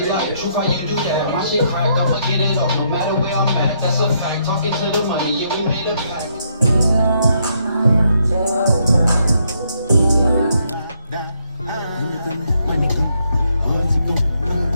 like, truth, how you do that? My shit crack, I'ma get it off no matter where I'm at. That's a fact. Talking to the money, yeah, we made a pact.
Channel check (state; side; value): inverted; both; correlation -0.74